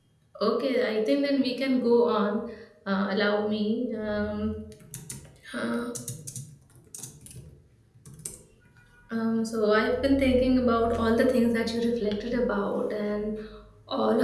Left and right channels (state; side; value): identical; both; correlation 1.00